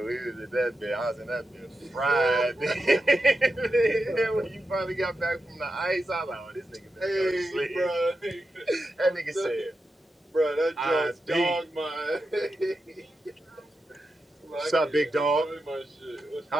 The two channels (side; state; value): both; normal; correlation 0.89